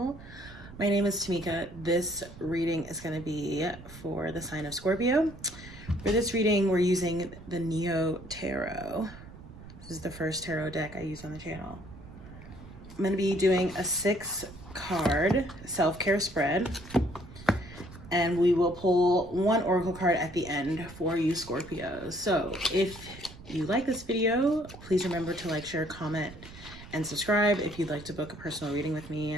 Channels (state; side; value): noise; right; rumble, 17 dB below the sound